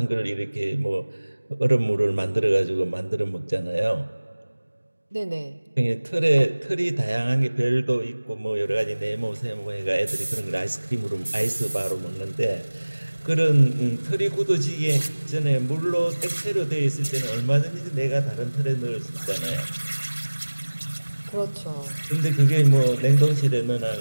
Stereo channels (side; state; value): both; inverted; correlation -1.00